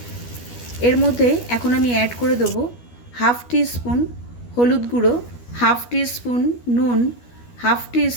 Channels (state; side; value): late; right; 12 ms